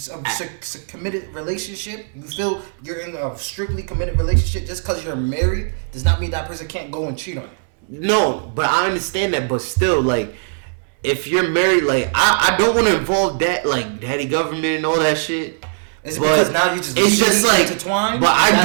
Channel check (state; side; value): silent; left; digital silence